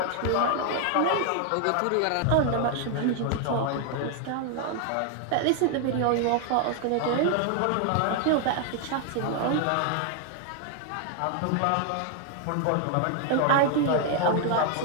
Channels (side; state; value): both; different; correlation 0.00